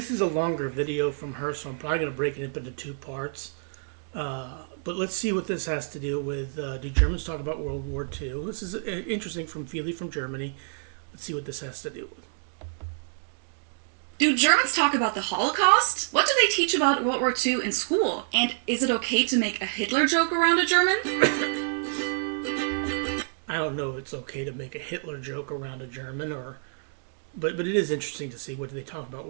is a longer video from her, so I'm probably going to break it up into two parts. But let's see what this has to do with do Germans talk about World War II? This is interesting from Feely from Germany. Let's see what this has to do with. Do Germans talk about the Holocaust? What do they teach about World War II in school? And is it okay to make a Hitler joke around a German? I don't know if it's okay to make a Hitler joke around a German, but it is interesting to see what do they talk about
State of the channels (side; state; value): left; silent; digital silence